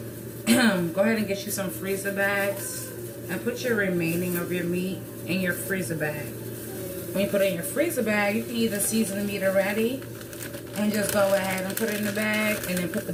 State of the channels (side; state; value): both; identical; correlation 1.00